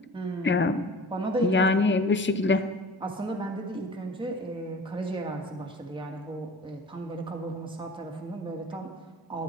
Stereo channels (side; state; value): both; normal; correlation 0.42